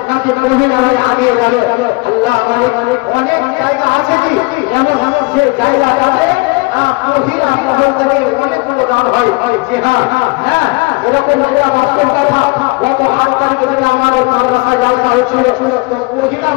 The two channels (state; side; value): quieter; right; 26.3 dB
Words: নাকি মহিলা হয়ে আগে যাবে। আল্লাহ মালিক অনেক জায়গা আছে কি এমন এমন যে জায়গাটাতে মহিলা মহল থেকে অনেকগুলো দান হয়। যে হ্যাঁ এরকম বাস্তব কথা, গত ৮ তারিখ থেকে আমাদের মাদ্রাসায় জালসা হচ্ছিল, তো মহিলা